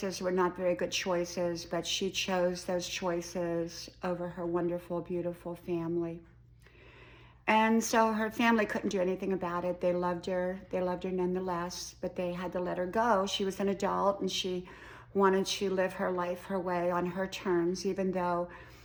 were not very good choices, but she chose those choices over her wonderful, beautiful family. And so her family couldn't do anything about it. They loved her. They loved her nonetheless, but they had to let her go. She was an adult and she wanted to live her life her way on her terms, even though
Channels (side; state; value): both; identical; correlation 1.00